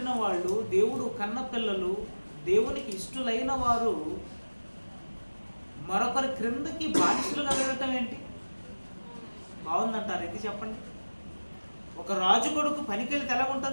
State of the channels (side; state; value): both; inverted; correlation -1.00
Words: వాళ్ళు, దేవుడు కన్న పిల్లలు, దేవునికి ఇష్టలైన వారు మరొకరి క్రిందకి బానిసలుగా వెళ్ళటం ఏంటి? బాగుందంటారు? ఇది చెప్పండి. ఒక రాజు కొడుకు పనికెళ్ళి ఎలా